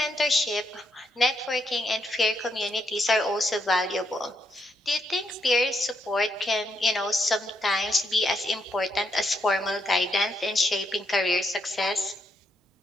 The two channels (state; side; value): normal; both; correlation 0.79